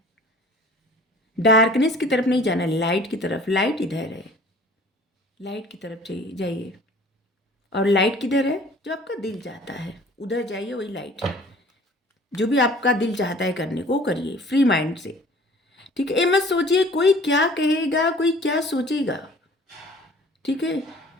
डार्कनेस की तरफ नहीं जाना, लाइट की तरफ। लाइट इधर है, लाइट की तरफ जाइए। और लाइट किधर है? जो आपका दिल चाहता है उधर जाइए, वही लाइट है। जो भी आपका दिल चाहता है करने को करिए, फ्री माइंड से। ठीक है। ये मत सोचिए कोई क्या कहेगा, कोई क्या सोचेगा। ठीक है।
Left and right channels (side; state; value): both; normal; correlation 0.50